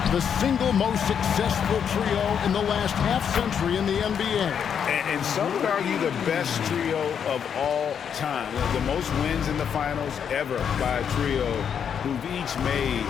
the single most successful trio in the last half-century in the NBA. And some would argue the best trio of all time. The most wins in the finals ever by a trio who've each made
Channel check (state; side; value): quieter; right; 7.8 dB